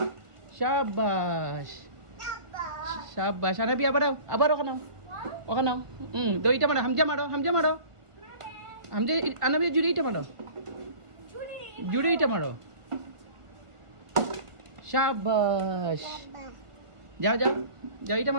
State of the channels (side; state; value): left; late; 1.5 ms